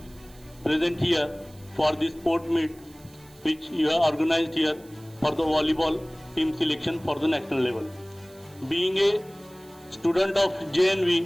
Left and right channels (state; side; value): noise; right; hiss, 25 dB below the sound